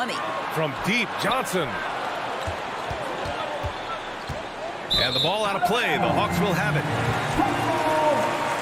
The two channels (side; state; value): both; identical; correlation 1.00